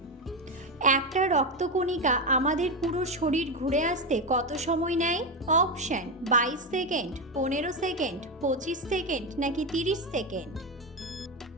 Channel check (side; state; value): both; normal; correlation 0.12